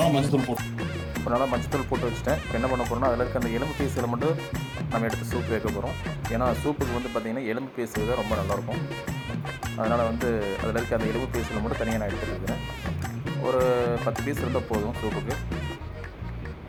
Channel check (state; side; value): identical; both; correlation 1.00